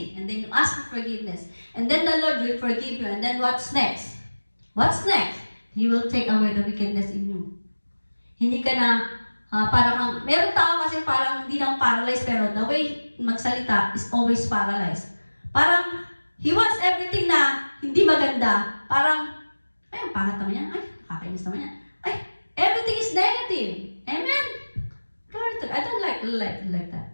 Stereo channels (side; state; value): both; inverted; correlation -1.00